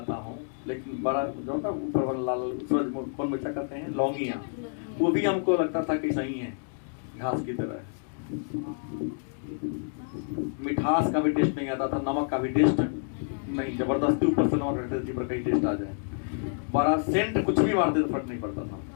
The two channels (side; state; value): right; silent; digital silence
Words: हूँ, लेकिन बड़ा जो ना ऊपर वाला लाल सूरजमुखी मिर्चा कहते हैं, लौंगिया, वो भी हमको लगता था कि सही है, घास की तरह। मिठास का भी टेस्ट नहीं आता था, नमक का भी टेस्ट नहीं, जबरदस्ती ऊपर से नमक रखते थे जिस पर कहीं टेस्ट आ जाए। बड़ा सेंट कुछ भी मारते तो फर्क नहीं पड़ता था,